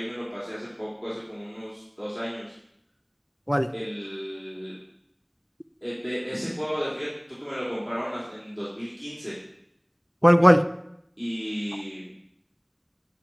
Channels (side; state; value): both; identical; correlation 1.00